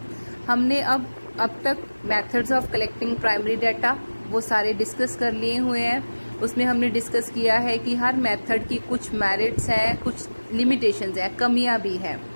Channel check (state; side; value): inverted; both; correlation -1.00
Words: हमने अब तक methods of collecting primary data वो सारे डिस्कस कर लिए हुए हैं। उसमें हमने डिस्कस किया है कि हर मेथड की कुछ मेरिट्स हैं, कुछ लिमिटेशंस हैं, कमियां भी हैं।